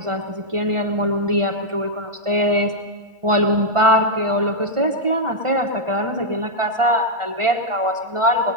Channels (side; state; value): left; late; 1.4 ms